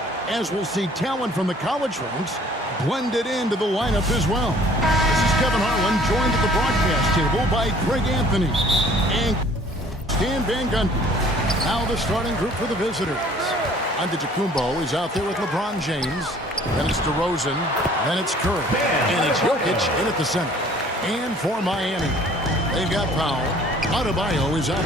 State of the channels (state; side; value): normal; both; correlation 0.54